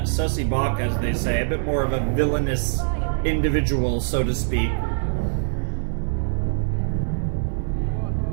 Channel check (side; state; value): left; silent; digital silence